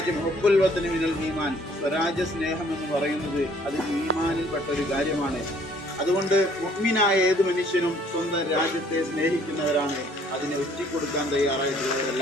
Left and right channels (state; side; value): normal; both; correlation 0.60